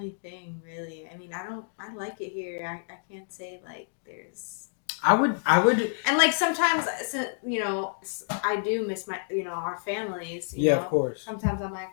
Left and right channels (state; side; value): silent; right; digital silence